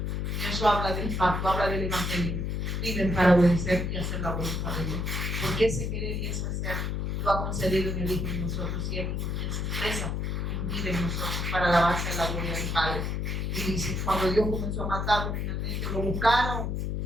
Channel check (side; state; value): left; noise; hum, 1 dB below the sound